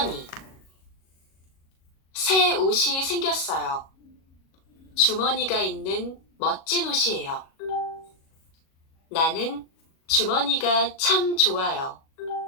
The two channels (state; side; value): late; right; 37 ms